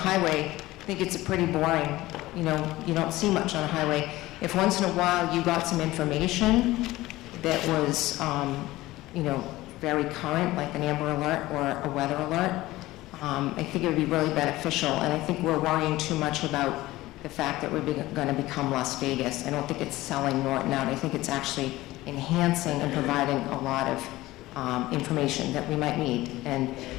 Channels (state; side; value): quieter; right; 17.7 dB